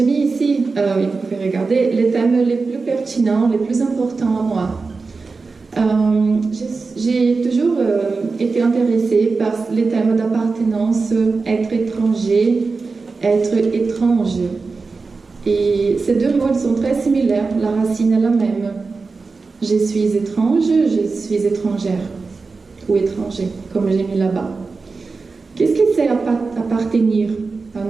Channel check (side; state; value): left; quieter; 4.2 dB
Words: mis ici, vous pouvez regarder, les thèmes les plus pertinents, les plus importants à moi. J'ai toujours été intéressée par les thèmes d'appartenance, être étranger, être étrange. Et ces 2 mots sont très similaires, la racine est la même. Je suis étrange, je suis étrangère, ou étranger, comme j'ai mis là-bas. Qu'est-ce que c'est appartenir à